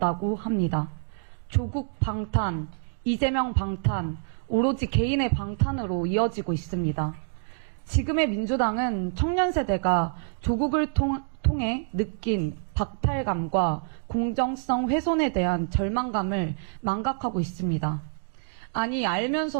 합니다. 조국 방탄, 이재명 방탄, 오로지 개인의 방탄으로 이어지고 있습니다. 지금의 민주당은 청년 세대가 조국을 통해 느낀 박탈감과 공정성 훼손에 대한 절망감을 망각하고 있습니다. 아니,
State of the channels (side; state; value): left; silent; digital silence